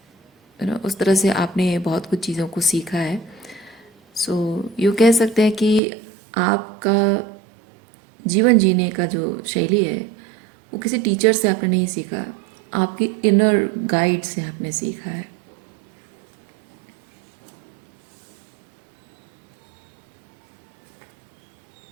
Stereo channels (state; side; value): drops out; left; at 5.8 s